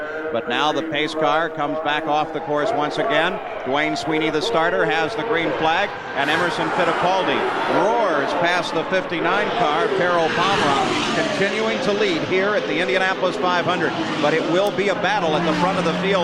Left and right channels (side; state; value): both; identical; correlation 1.00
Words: but now the pace car comes back off the course once again. Dwayne Sweeney, the starter, has the green flag, and Emerson Fittipaldi roars past the 59 car, Carol Pomroth, continuing to lead here at the Indianapolis 500, but it will be a battle at the front of the